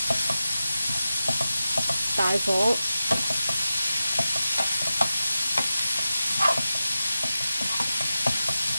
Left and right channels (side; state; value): both; inverted; correlation -0.93